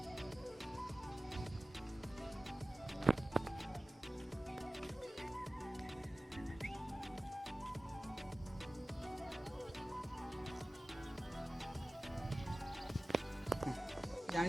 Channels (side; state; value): both; normal; correlation 0.97